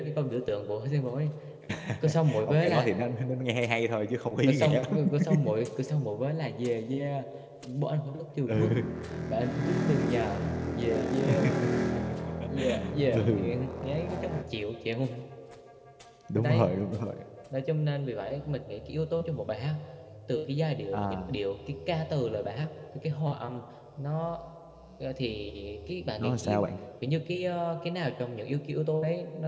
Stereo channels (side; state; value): both; identical; correlation 1.00